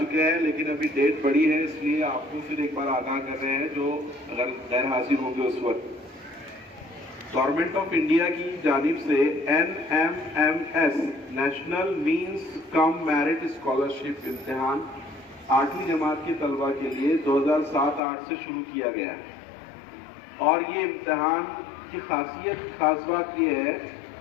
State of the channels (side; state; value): right; drops out; at 18.0 s